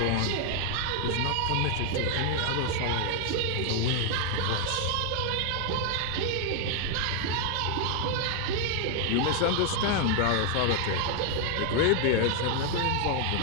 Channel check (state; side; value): different; both; correlation 0.00